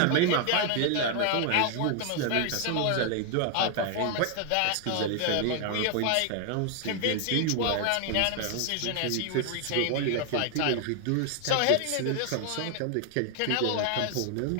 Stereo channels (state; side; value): different; both; correlation 0.00